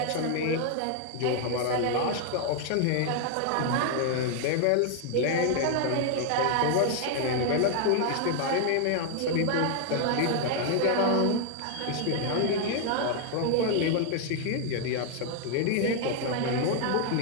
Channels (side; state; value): both; different; correlation 0.00